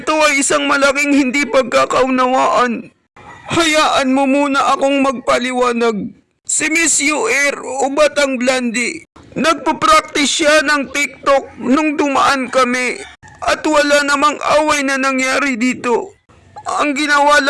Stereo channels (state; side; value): identical; both; correlation 1.00